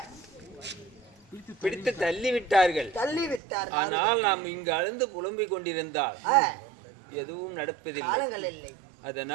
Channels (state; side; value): drops out; left; at 3.4 s